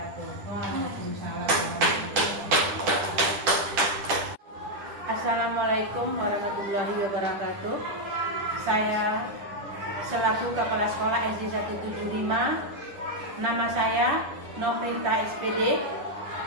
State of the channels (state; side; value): late; left; 10 ms